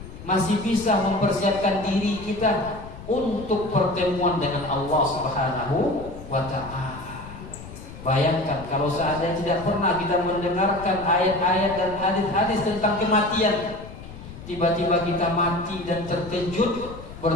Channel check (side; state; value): left; noise; rumble, 14 dB below the sound